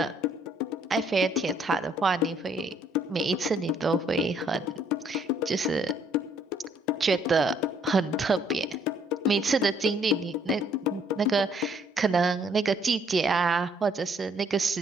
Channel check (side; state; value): both; normal; correlation 0.65